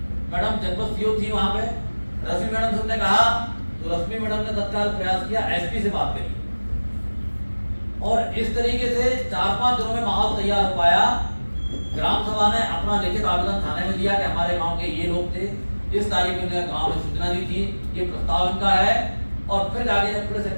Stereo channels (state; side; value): inverted; both; correlation -1.00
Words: मैडम जनपद सीओ थी वहां पे। रश्मि मैडम से उसने कहा, तो रश्मि मैडम ने तत्काल प्रयास किया, एसपी से बात करी, और इस तरीके से 4-5 दिनों में माहौल तैयार हो पाया। ग्राम सभा ने अपना लिखित आवेदन थाने में दिया कि हमारे गांव के ये लोग थे, इस तारीख में गांव में सूचना दी थी, ये प्रस्ताव इनका है। और फिर आगे जब पुलिस